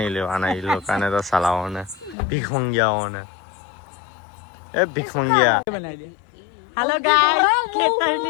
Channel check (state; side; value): drops out; right; at 2.1 s